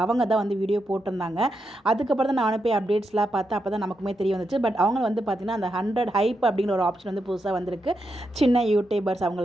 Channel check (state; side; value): normal; both; correlation 0.84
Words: அவங்க தான் வந்து வீடியோ போட்டிருந்தாங்க. அதுக்கப்புறம் தான் நானும் போய் அப்டேட்ஸ்லாம் பார்த்து அப்போ தான் நமக்குமே தெரிய வந்துச்சு. பட் அவங்க வந்து பார்த்திங்கன்னா அந்த 100 ஹைப் அப்படிங்கிற ஒரு ஆப்ஷன் வந்து புதுசாக வந்திருக்கு சின்ன யூடியூபர்ஸ்